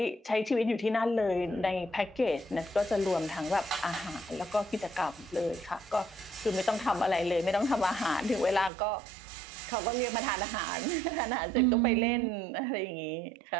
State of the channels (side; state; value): left; drops out; at 8.7 s